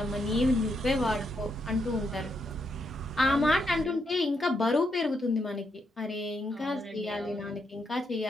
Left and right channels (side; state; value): both; normal; correlation 0.79